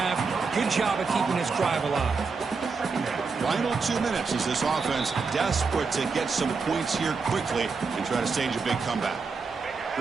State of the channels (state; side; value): quieter; left; 4.8 dB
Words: Good job of keeping this drive alive. Final 2 minutes as this offense desperate to get some points here quickly and try to stage a big comeback.